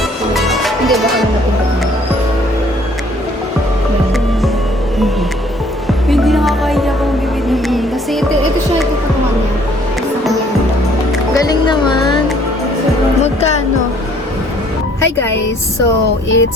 Hindi, baka na natin. Hindi nakakain niya kung bibili. Kasi ito siya, ito patungan niya. Galing naman. Magkano? Hi guys, so it's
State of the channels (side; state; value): both; normal; correlation 0.60